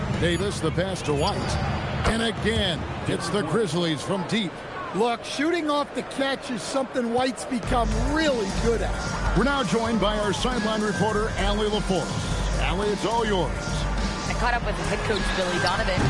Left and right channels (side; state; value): both; identical; correlation 1.00